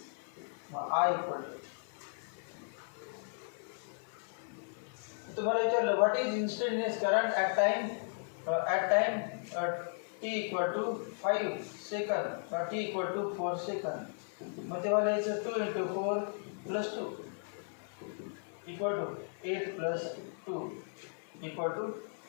मग I इक्वल टू तुम्हाला विचारलं what is instantaneous current at time t equal to 5 सेकंद t equal to 4 सेकंद, मग तेव्हा लिहायचं 2 × 4 + 2 equal to 8 + 2 equal to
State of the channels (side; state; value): right; silent; 54 dB below the other